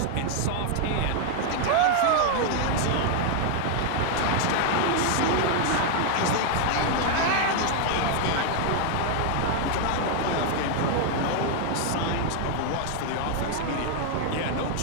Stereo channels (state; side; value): different; both; correlation 0.00